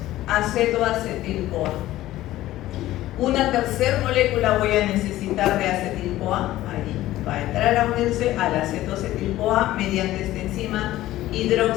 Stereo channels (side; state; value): right; quieter; 15.3 dB